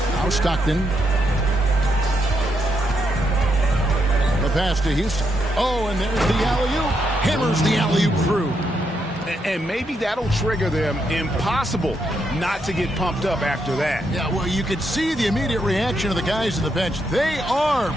Now Stockton. The pass to Houston. Oh, and there's the alley-oop. Hammers the alley-oop through. And maybe that'll trigger them. Impossible not to get pumped up after that. Yeah, well, you could see the immediate reaction of the guys on the bench. They are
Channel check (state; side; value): normal; both; correlation 0.80